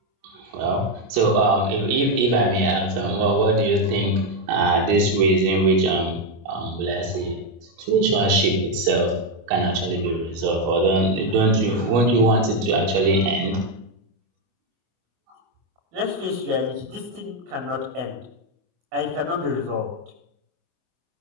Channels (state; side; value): late; left; 25 ms